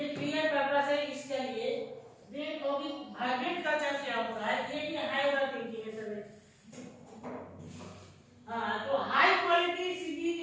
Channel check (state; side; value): identical; both; correlation 1.00